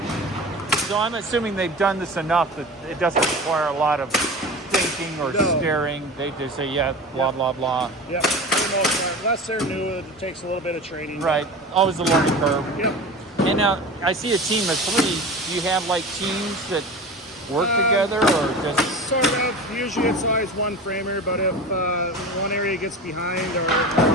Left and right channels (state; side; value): normal; both; correlation 0.33